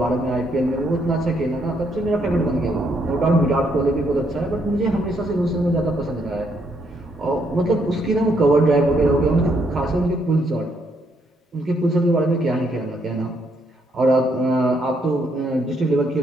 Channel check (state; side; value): normal; both; correlation 0.74